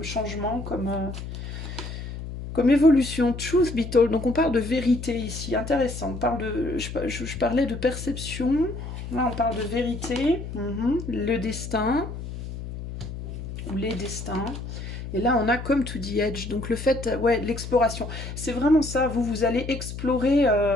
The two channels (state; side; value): noise; left; hum, 8 dB below the sound